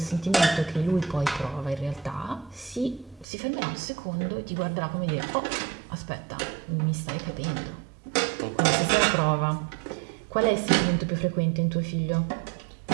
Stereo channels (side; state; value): left; drops out; at 3.2 s